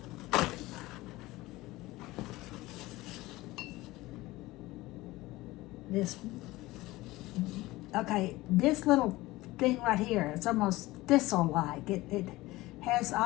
This little thing right here, it's almost thistle-like. It has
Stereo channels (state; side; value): quieter; right; 19.0 dB